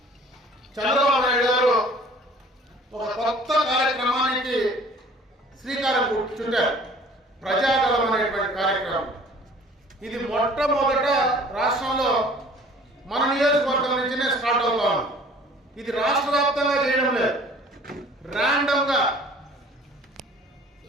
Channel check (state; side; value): normal; both; correlation 0.51